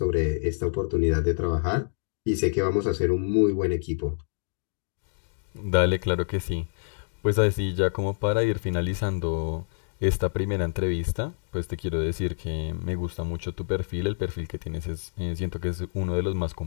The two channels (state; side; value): silent; right; digital silence